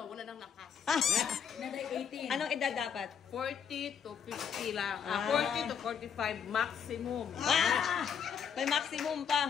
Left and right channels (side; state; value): right; quieter; 7.5 dB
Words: wala nang lakas. Naday 18. Anong edad dapat? 40 to 50 lang. 40 to 45 maximum. May maximum